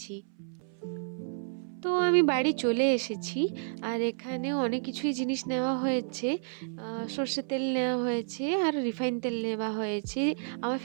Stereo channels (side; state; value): left; silent; 57 dB below the other